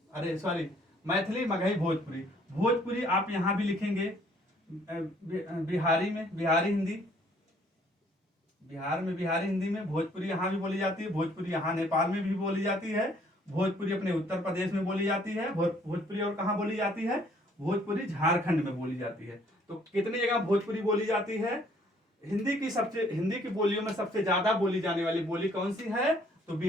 मैथिली, मगही, भोजपुरी। भोजपुरी आप यहां भी लिखेंगे, बिहारी में बिहारी हिंदी, बिहार में बिहारी हिंदी में। भोजपुरी यहाँ भी बोली जाती है, भोजपुरी यहाँ नेपाल में भी बोली जाती है, भोजपुरी अपने उत्तर प्रदेश में बोली जाती है, भोजपुरी और कहाँ बोली जाती है, भोजपुरी झारखंड में बोली जाती है। तो कितनी जगह भोजपुरी बोली जाती है, हिंदी की बोलियों में सबसे ज्यादा बोली जाने वाली बोली कौन सी है, तो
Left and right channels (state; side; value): normal; both; correlation 0.62